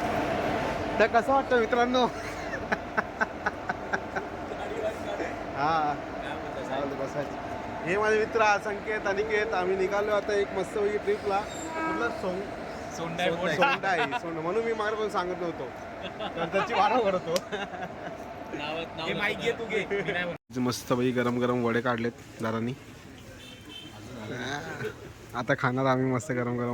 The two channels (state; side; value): identical; both; correlation 1.00